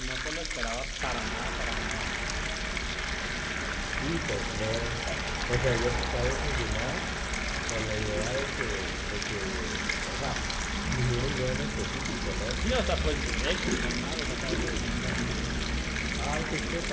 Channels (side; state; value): both; identical; correlation 1.00